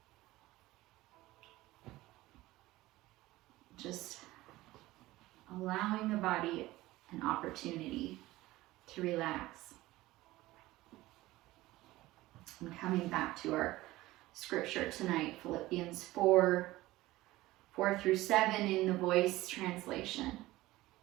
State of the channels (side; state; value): left; quieter; 17.9 dB